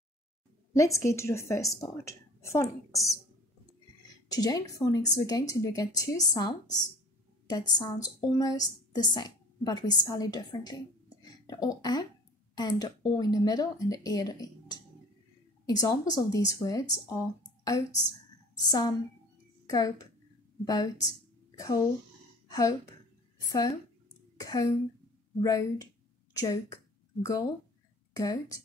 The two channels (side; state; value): both; normal; correlation 0.47